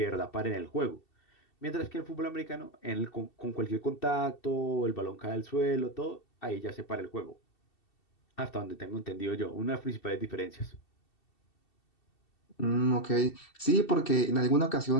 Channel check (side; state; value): right; late; 2.7 ms